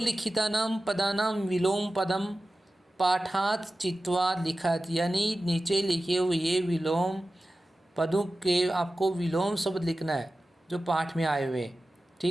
पदानां विलोम पदम पाठात चित्वा लिखत, यानी नीचे लिखे हुए विलोम पदों के आपको विलोम शब्द लिखना है जो पाठ में आए हुए,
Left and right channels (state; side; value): normal; both; correlation 0.95